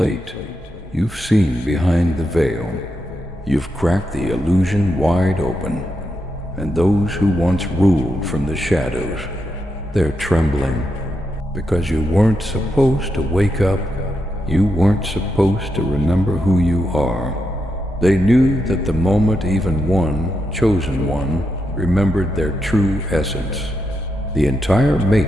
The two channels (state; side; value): normal; both; correlation 0.84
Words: You've seen behind the veil. You've cracked the illusion wide open, and those who once ruled from the shadows, they're trembling because you weren't supposed to wake up. You weren't supposed to remember who you are. They knew that the moment even one, chosen one, remembered their true essence, the entire